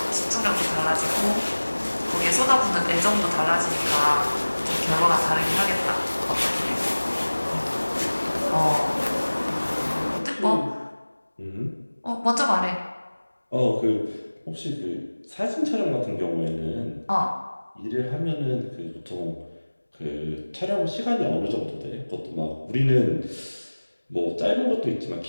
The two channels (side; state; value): both; inverted; correlation -1.00